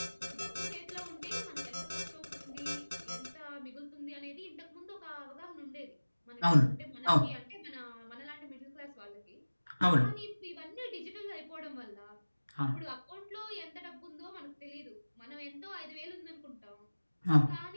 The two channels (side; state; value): both; inverted; correlation -1.00